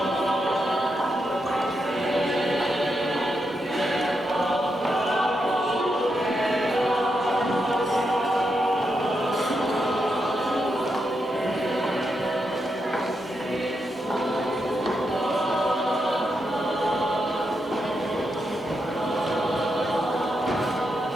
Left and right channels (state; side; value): normal; both; correlation 0.84